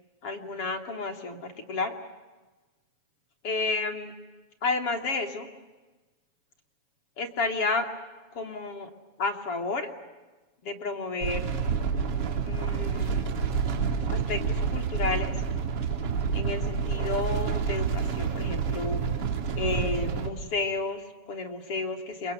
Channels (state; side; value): late; right; 7.2 ms